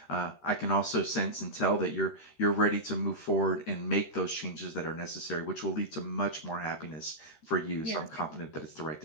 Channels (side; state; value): right; late; 13 ms